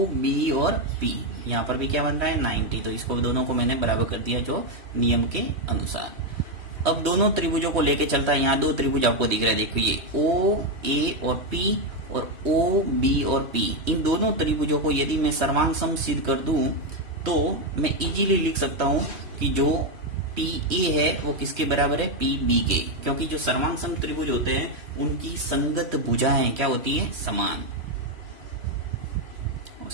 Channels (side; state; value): left; late; 3.1 ms